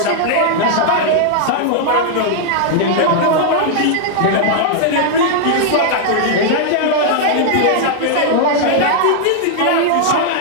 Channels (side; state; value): both; different; correlation -0.01